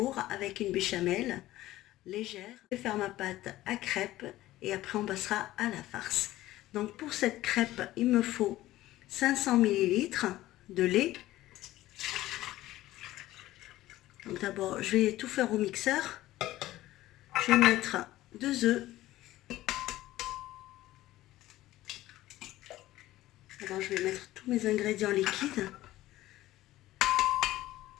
avec une béchamel légère. Je vais faire ma pâte à crêpes et après on passera à la farce. Donc pour cette crêpe il me faut 500 ml de lait. Donc d'abord je vais tout faire au mixeur. Je vais mettre 2 œufs. Alors je vais mettre tous mes ingrédients liquides.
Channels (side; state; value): right; quieter; 15.8 dB